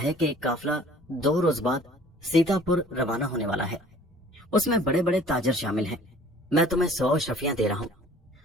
कि एक काफिला 2 रोज बाद सीतापुर रवाना होने वाला है। उसमें बड़े बड़े ताजर शामिल हैं। मैं तुम्हें 100 अशरफियां दे रहा हूँ।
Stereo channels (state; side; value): normal; both; correlation 0.51